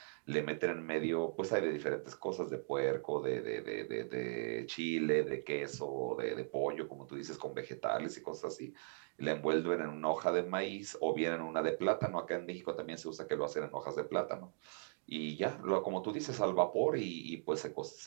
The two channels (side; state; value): left; silent; digital silence